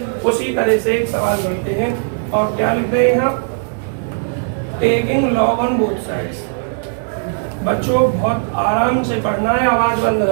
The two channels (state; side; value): silent; left; digital silence